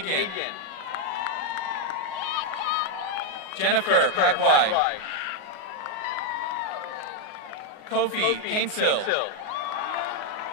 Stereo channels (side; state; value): right; late; 38 ms